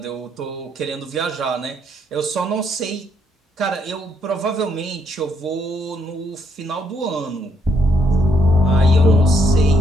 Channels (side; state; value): both; normal; correlation 0.72